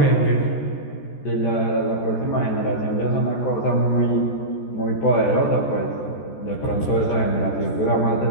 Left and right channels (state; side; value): late; right; 14 ms